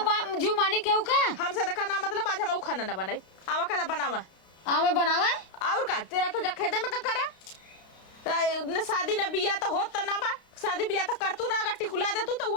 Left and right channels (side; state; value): right; late; 32 ms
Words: जू मानी केहू का हमसे देखा ना मतलब आज हम खाना ना बनाई आवा का बनावा आमे बनावे और का तेरा तो जा खेते में का करे न शादी न बिया तो होत त ना बा शादी बिया तो करतू ना अगर टिकुला दे तू तो वो